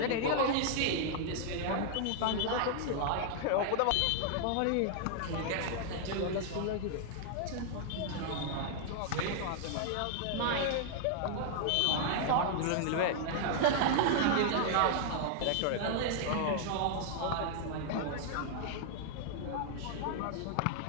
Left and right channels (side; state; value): both; different; correlation -0.01